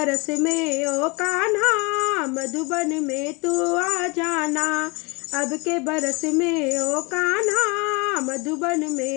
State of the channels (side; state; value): right; quieter; 28.4 dB